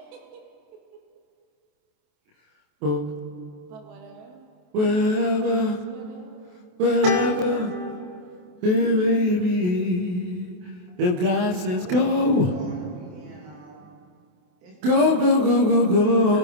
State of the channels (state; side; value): late; left; 28 ms